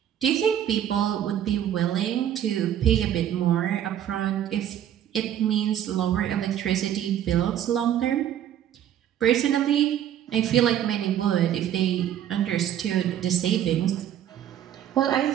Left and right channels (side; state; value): left; quieter; 10.7 dB